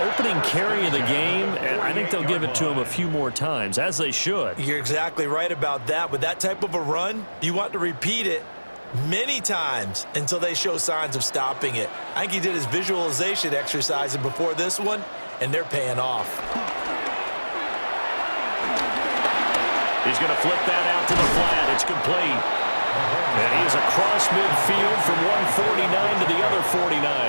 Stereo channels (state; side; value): inverted; both; correlation -1.00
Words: carry of the game, and I think they'll give it to him a few more times, as they should. You're exactly right about that. With that type of a run, you want to repeat it many times until they show signs of stopping it. I think he did his visualization exercise before this one, and they're paying off. He's going to flip that out to the flat. It's complete. And he is across midfield from one 49 to the other